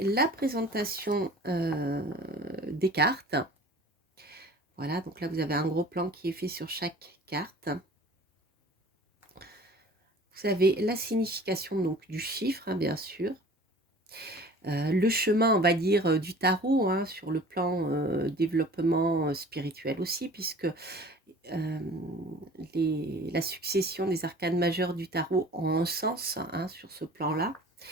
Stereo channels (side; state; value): both; normal; correlation 0.45